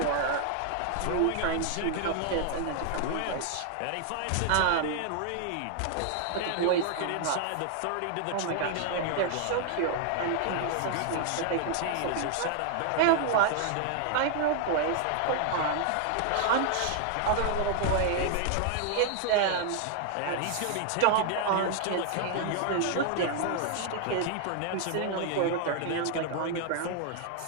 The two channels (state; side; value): different; both; correlation 0.00